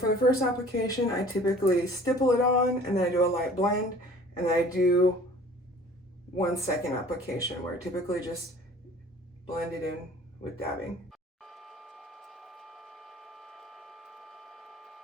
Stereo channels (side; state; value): both; normal; correlation 0.48